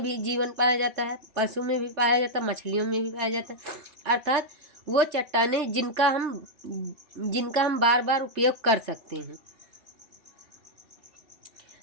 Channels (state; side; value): late; left; 3.3 ms